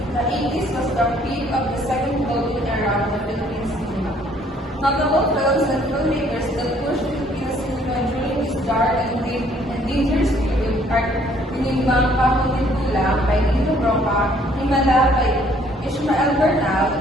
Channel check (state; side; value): normal; both; correlation 0.62